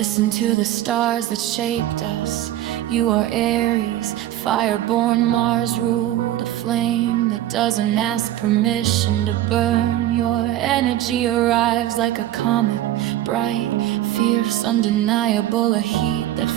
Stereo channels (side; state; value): left; quieter; 13.5 dB